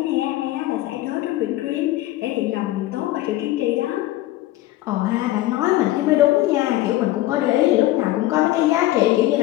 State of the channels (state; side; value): quieter; right; 16.1 dB